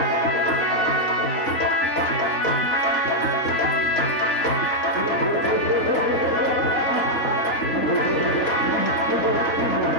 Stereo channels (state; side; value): late; right; 3.4 ms